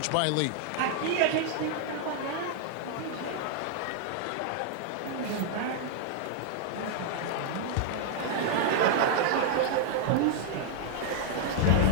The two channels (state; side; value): different; both; correlation 0.00